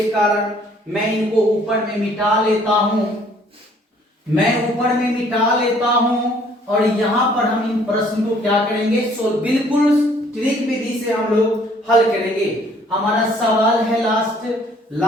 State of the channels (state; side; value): normal; both; correlation 0.60